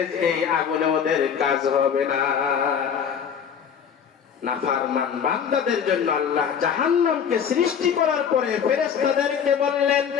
এই আগুনে ওদের কাজ হবে না। নাফরমান বান্দাদের জন্য আল্লাহ জাহান্নামকে সৃষ্টি করার পরে ফেরেশতাদেরকে বললেন,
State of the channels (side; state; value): right; quieter; 7.6 dB